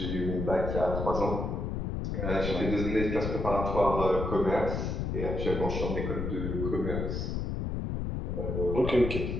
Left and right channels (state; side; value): noise; left; rumble, 2 dB below the sound